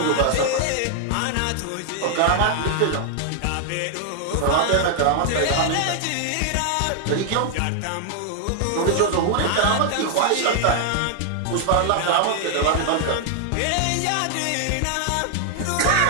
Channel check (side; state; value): both; different; correlation 0.00